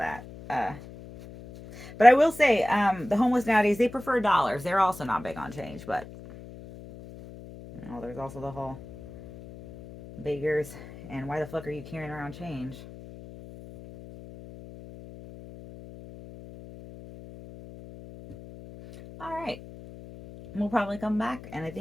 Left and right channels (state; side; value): noise; left; hum, 16 dB below the sound